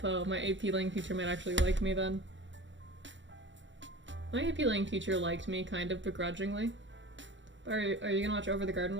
My AP Lang teacher might actually like me then. My AP Lang teacher liked me, kind of begrudgingly. Are you gonna watch Over the Garden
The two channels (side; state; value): left; late; 0.54 ms